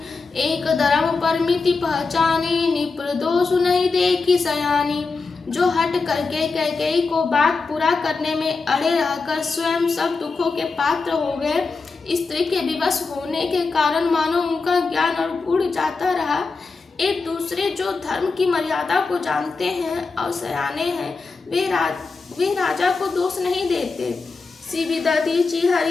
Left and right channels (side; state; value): right; quieter; 4.2 dB